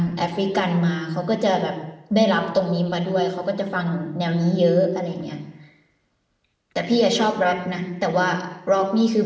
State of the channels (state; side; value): identical; both; correlation 1.00